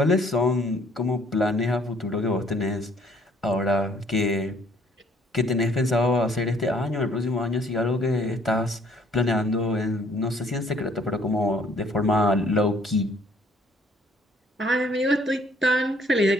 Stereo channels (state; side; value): normal; both; correlation 0.62